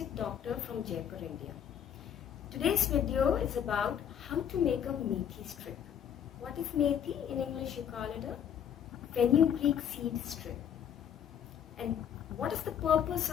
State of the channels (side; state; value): right; quieter; 9.0 dB